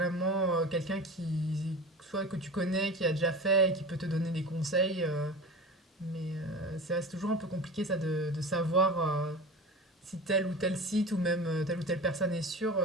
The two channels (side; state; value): both; normal; correlation 0.32